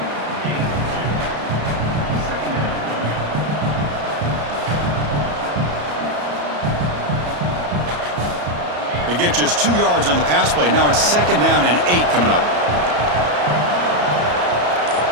They get just 2 yards on the pass play. Now it's 2nd down and 8 coming up.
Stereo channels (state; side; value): late; left; 34 ms